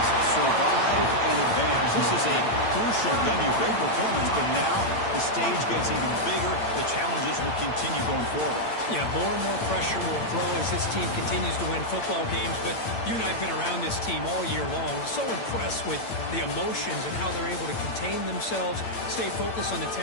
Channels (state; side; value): late; right; 8.8 ms